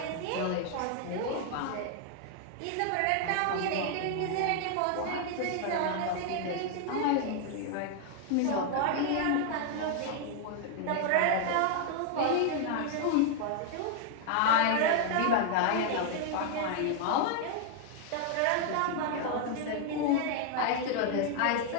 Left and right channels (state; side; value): different; both; correlation 0.00